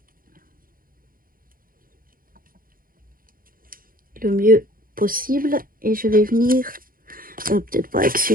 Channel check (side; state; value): left; late; 0.41 ms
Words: Le mieux possible. Et je vais venir, peut-être pas avec